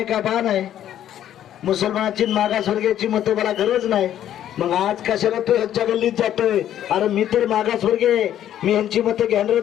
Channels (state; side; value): quieter; right; 11.2 dB